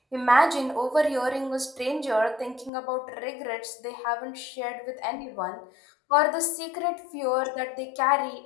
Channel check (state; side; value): drops out; right; at 2.7 s